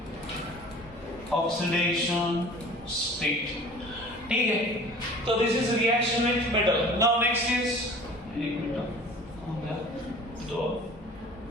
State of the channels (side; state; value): both; normal; correlation 0.44